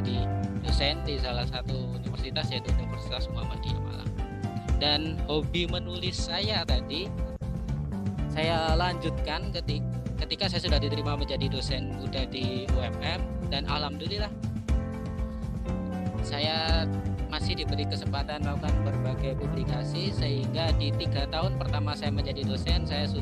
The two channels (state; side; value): identical; both; correlation 1.00